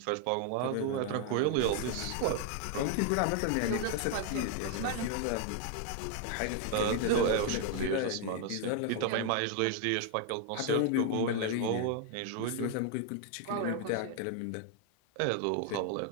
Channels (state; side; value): different; both; correlation 0.00